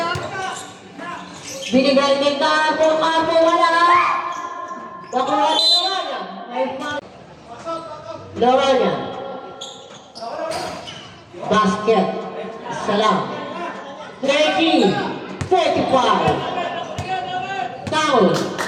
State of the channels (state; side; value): identical; both; correlation 1.00